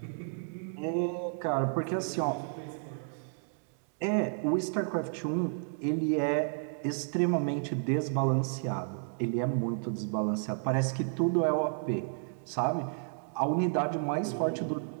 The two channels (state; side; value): silent; left; digital silence